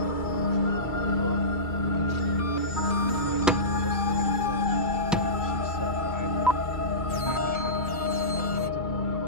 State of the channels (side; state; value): both; normal; correlation -0.19